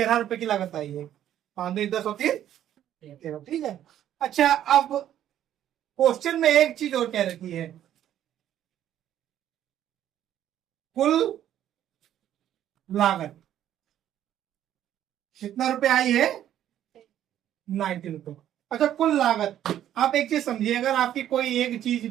रुपए की लागत आई है। 5 2 10 होती है 13, ठीक है। अच्छा अब क्वेश्चन में एक चीज और क्या रखी है, कुल लागत कितना रुपए आई है? 90 रुपए। अच्छा कुल लागत, आप एक चीज समझिए, अगर आपकी कोई एक चीज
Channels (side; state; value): left; quieter; 11.3 dB